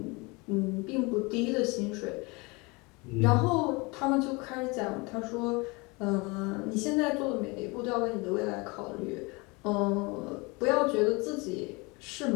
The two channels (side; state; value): right; quieter; 26.8 dB